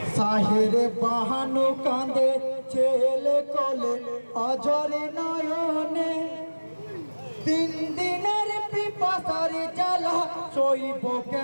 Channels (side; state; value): both; inverted; correlation -1.00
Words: সাহেরে বাহানো কাঁদে ছেলে কোলে অঝরে নয়নে, তিন দিনের পিপাসার জ্বালা সইব